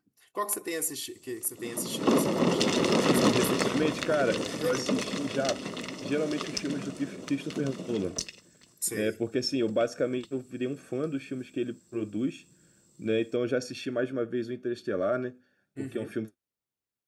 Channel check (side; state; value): both; identical; correlation 1.00